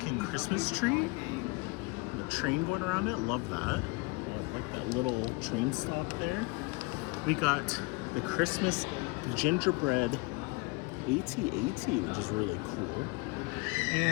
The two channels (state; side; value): quieter; right; 26.3 dB